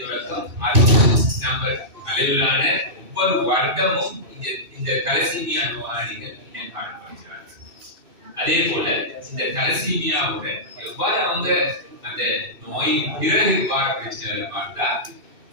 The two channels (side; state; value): left; late; 2.6 ms